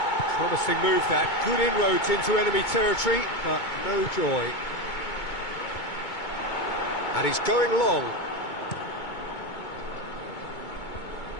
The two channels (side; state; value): right; late; 2.2 ms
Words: Promising move that. Good inroads into enemy territory, but no joy. And he's going long.